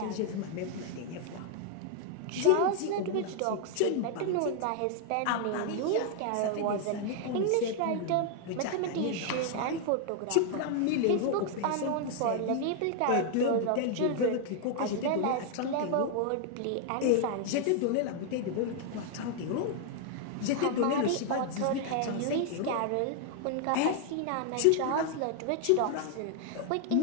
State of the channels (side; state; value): both; different; correlation 0.00